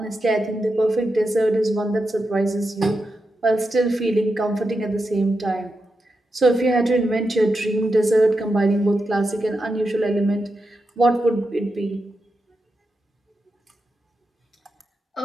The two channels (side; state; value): both; normal; correlation 0.87